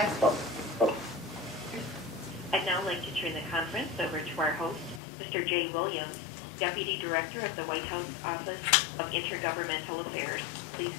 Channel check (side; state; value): right; drops out; at 5.0 s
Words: I'd now like to turn the conference over to our host, Mr. Jay Williams, Deputy Director of the White House Office of Intergovernmental Affairs. Please